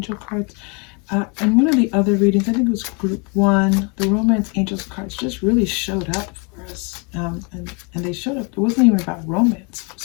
cards. And one of the other readings, I think it was group 1, the romance angels cards just really showed up for us. and they showed up. It wasn't even about romance. It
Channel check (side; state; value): right; quieter; 33.1 dB